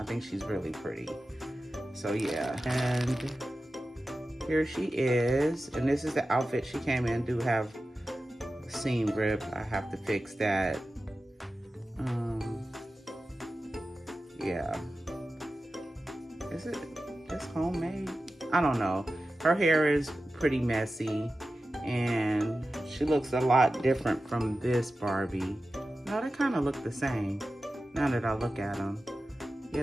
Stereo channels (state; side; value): normal; both; correlation 0.93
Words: think she's really pretty. So yeah, and here she is, and this is the outfit she came in. Do have seam rip. I have to fix that. Yeah. Is it just homemade? I don't know. Her hair is pretty messy, and she looks a lot different from this Barbie. No, they kind of look the same now that I look at them. Yeah,